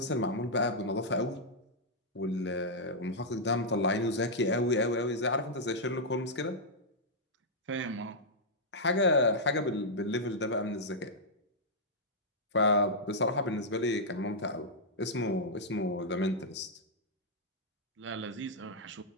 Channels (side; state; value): both; normal; correlation -0.08